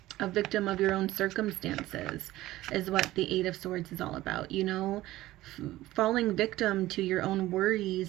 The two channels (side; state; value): left; quieter; 16.4 dB